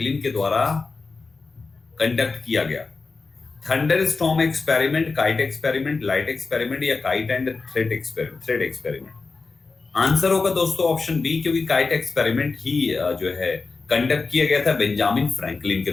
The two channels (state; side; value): quieter; right; 4.1 dB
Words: के द्वारा कंडक्ट किया गया? Thunderstorm experiment, kite experiment, light experiment या kite and thread experiment? Answer होगा दोस्तों ऑप्शन बी, क्योंकि काइट एक्सपेरिमेंट ही जो है कंडक्ट किया गया था बेंजामिन फ्रैंकलिन के